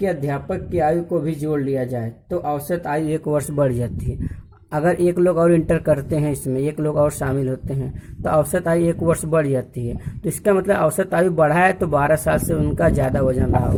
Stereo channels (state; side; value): identical; both; correlation 1.00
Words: अध्यापक की आयु को भी जोड़ लिया जाए तो औसत आयु 1 वर्ष बढ़ जाती है। अगर एक लोग और इंटर करते हैं, इसमें एक लोग और शामिल होते हैं, तो औसत आयु 1 वर्ष बढ़ जाती है। तो इसका मतलब औसत आयु बढ़ा है तो 12 साल से उनका ज़्यादा वजन रहा